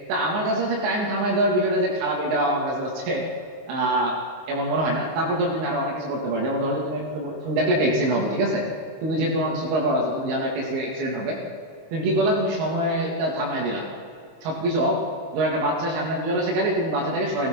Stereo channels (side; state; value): left; late; 19 ms